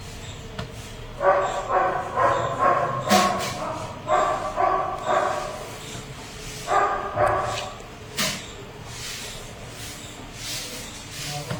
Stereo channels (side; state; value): both; identical; correlation 1.00